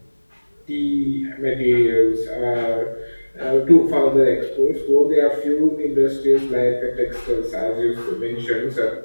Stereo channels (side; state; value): both; inverted; correlation -1.00